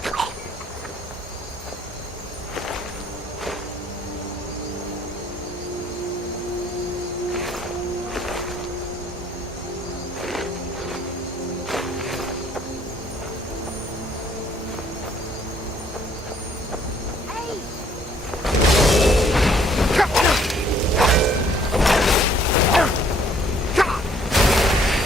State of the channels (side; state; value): both; normal; correlation 0.62